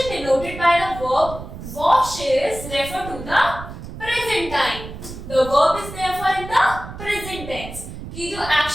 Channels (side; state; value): right; noise; rumble, 11 dB below the sound